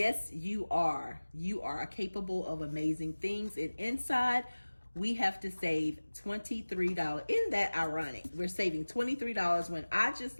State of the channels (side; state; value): both; inverted; correlation -1.00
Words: you are. You are capable of amazing things. And inside, we have to save $23. Isn't that ironic? We're saving $23 when I just